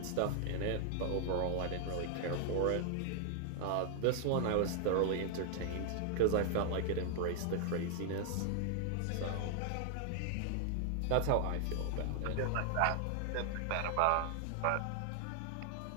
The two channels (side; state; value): both; different; correlation -0.01